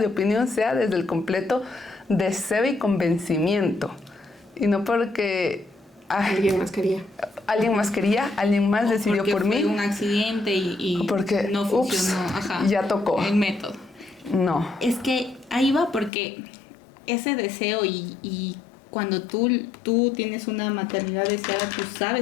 opinión sea desde el completo deseo y convencimiento. Y no porque... Alguien más quería. Alguien más quería, alguien más decidió porque por fue mí. un accidente y Porque, no funcionó. Ajá, ya tocó. el método. No. Es que ahí va porque ese deseo y cuando tú tienes una maternidad deseada, tú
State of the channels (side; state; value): right; drops out; at 16.1 s